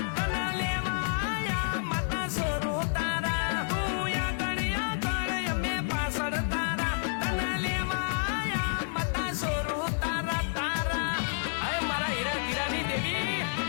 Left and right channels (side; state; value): right; silent; 58 dB below the other